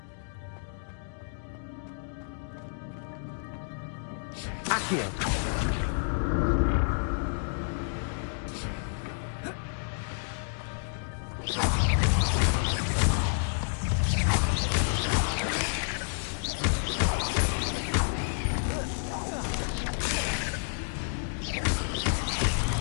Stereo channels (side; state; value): right; silent; digital silence